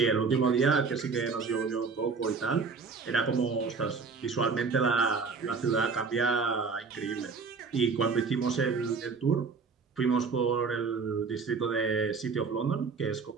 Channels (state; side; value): quieter; left; 4.9 dB